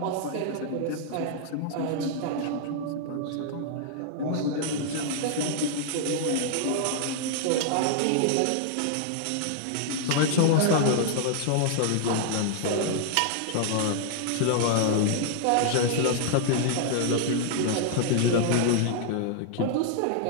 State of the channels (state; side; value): different; both; correlation -0.01